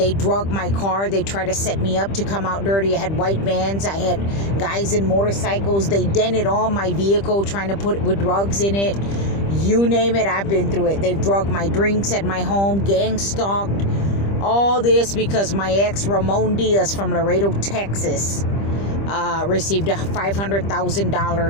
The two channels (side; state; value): right; late; 25 ms